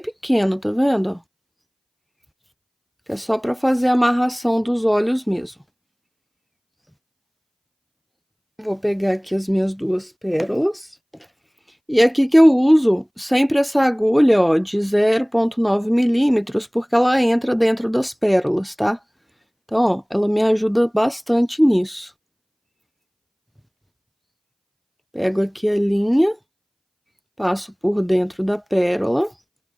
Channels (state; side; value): identical; both; correlation 1.00